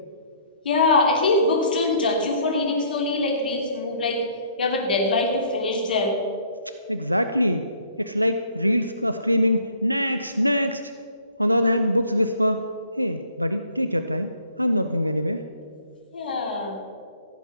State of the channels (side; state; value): both; inverted; correlation -0.59